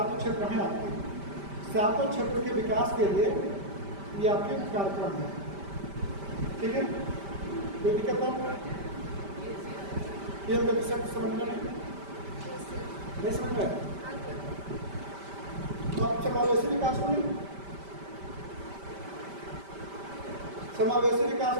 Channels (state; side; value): late; left; 5.1 ms